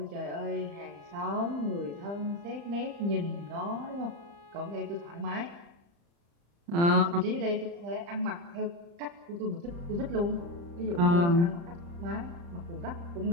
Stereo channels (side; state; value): left; late; 35 ms